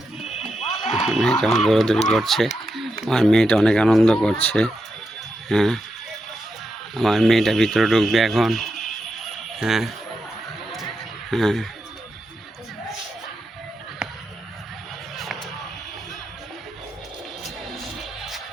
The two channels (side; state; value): both; normal; correlation 0.86